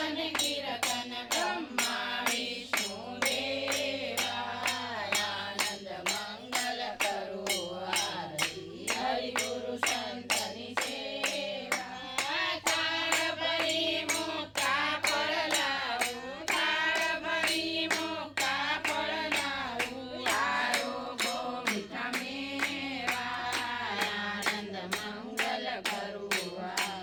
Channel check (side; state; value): both; identical; correlation 1.00